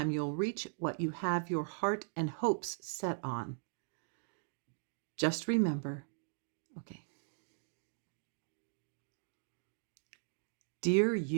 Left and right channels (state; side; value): silent; left; digital silence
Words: Your heart and hopes set on. Just remember, okay. Dear